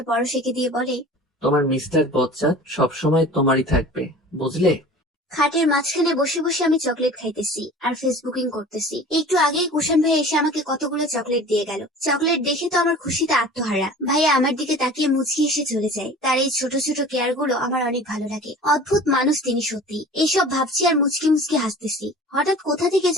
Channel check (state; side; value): normal; both; correlation 0.42